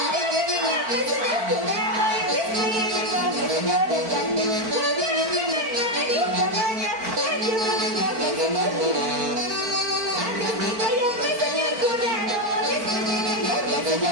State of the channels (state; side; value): late; left; 4.5 ms